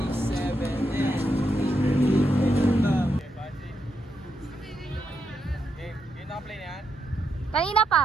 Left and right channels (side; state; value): both; normal; correlation 0.82